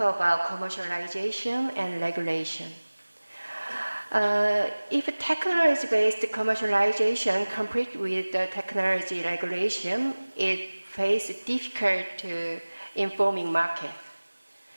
commercialization and regulation. If technology-based commercialization conflict with the technology regulation, it faces difficult informing market.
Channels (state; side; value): inverted; both; correlation -1.00